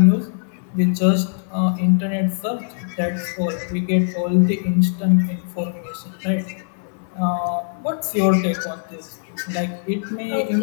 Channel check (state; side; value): silent; right; 60 dB below the other